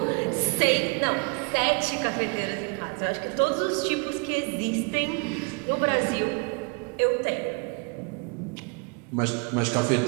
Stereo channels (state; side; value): quieter; left; 33.5 dB